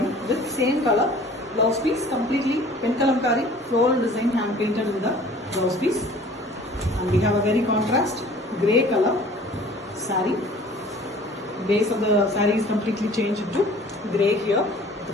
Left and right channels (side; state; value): both; normal; correlation 0.49